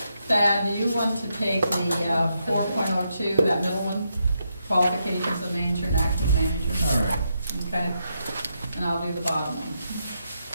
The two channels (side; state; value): both; inverted; correlation -0.81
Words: Thad, do you want to take the 4.02, that middle one? Qualifications of manager and acting manager? All right. Okay, and I'll do the bottom one.